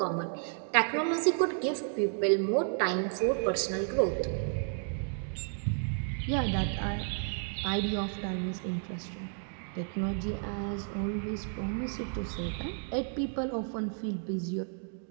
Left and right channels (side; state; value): left; silent; 56 dB below the other